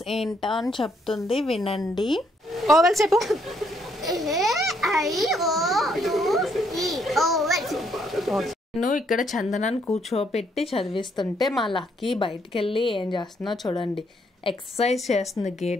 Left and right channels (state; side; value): normal; both; correlation 0.71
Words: ఏంటా అని చెప్తుంది, వినండి. ఓవెల్స్ చెప్పు. నేను ఇక్కడ చందనాన్ని కూర్చోపెట్టి చదివిస్తుంటే మా లక్కీ బయటికి వెళ్ళి ఏం చేస్తుందో చూడండి. ఎక్సర్సైజ్ చేస్తుంది